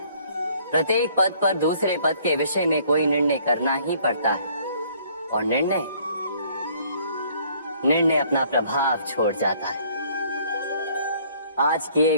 प्रत्येक पद पर दूसरे पद के विषय में कोई निर्णय करना ही पड़ता है और निर्णय अपना प्रभाव छोड़ जाता है। आज किए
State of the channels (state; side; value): inverted; both; correlation -0.60